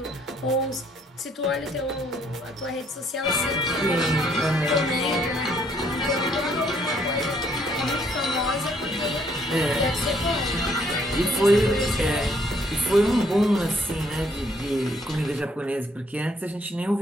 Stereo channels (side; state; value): both; normal; correlation 0.67